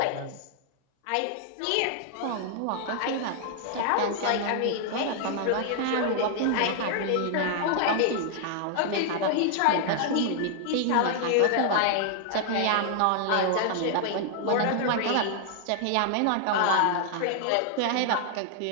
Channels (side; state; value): both; different; correlation 0.00